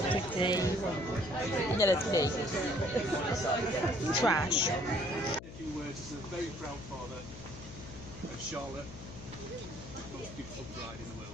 pretty. Yeah, that's pretty. Trash. A few words as a very proud father of Charlotte, the most beautiful bride in the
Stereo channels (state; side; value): noise; left; hum, 13 dB below the sound